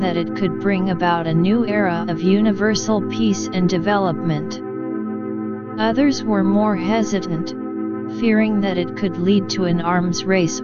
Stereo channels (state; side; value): identical; both; correlation 1.00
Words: it could bring about a new era of universal peace and development. Others were more hesitant, fearing that it could lead to an arms race